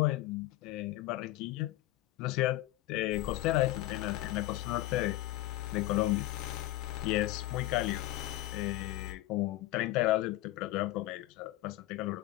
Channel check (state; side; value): quieter; right; 16.3 dB